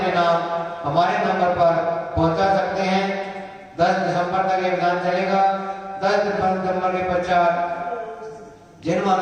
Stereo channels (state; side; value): identical; both; correlation 1.00